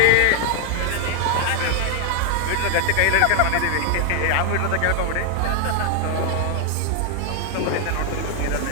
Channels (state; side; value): different; both; correlation 0.00